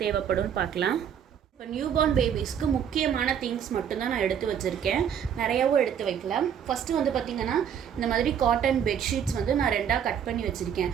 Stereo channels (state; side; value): quieter; left; 8.5 dB